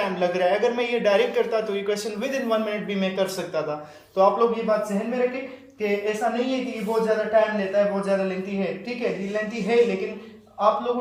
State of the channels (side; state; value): both; identical; correlation 1.00